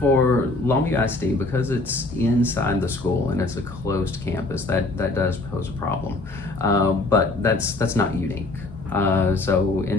Longview ISD, because it's inside the school and it's a closed campus, that does pose a problem. But that's not unique. So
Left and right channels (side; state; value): right; quieter; 3.1 dB